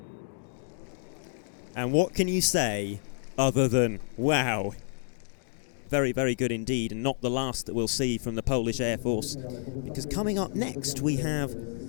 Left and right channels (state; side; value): silent; right; 58 dB below the other